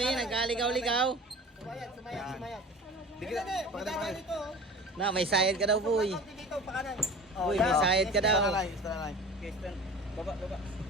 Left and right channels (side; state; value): both; normal; correlation 0.38